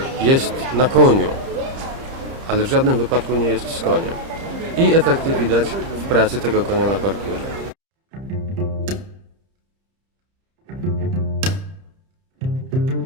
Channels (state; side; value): late; left; 31 ms